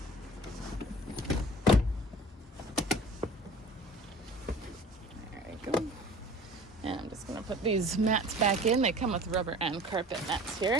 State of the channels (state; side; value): normal; both; correlation 0.44